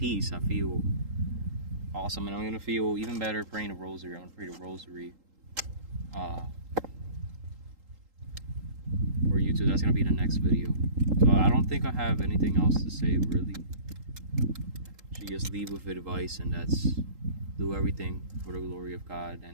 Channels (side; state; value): left; late; 3.8 ms